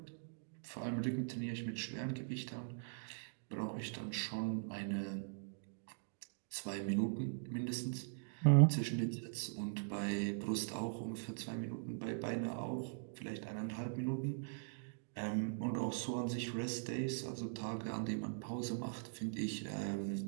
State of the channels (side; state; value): left; silent; digital silence